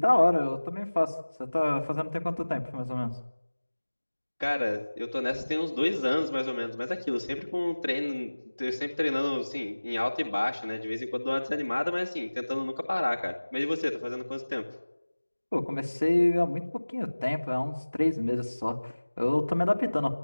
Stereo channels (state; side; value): inverted; both; correlation -1.00